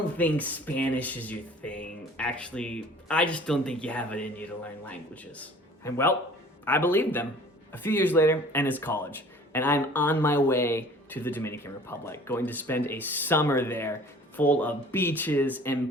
think Spanish is your thing. Actually, I just don't think you have it in you to learn languages. And well, I believed them. A few years later, and it's college, and I'm on my way to the Dominican Republic, going to spend a summer there full of beaches and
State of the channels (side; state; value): both; normal; correlation 0.49